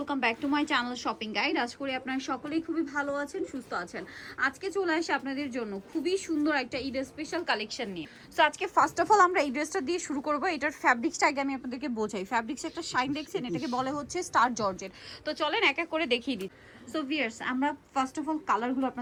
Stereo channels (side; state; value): both; identical; correlation 1.00